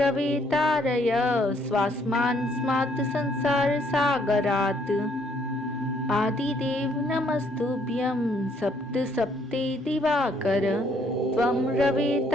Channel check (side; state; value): both; normal; correlation 0.67